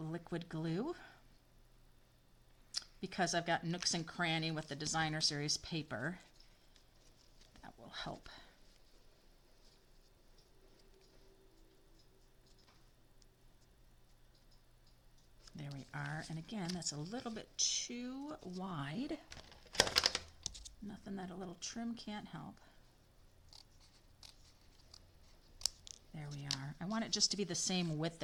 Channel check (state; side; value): identical; both; correlation 1.00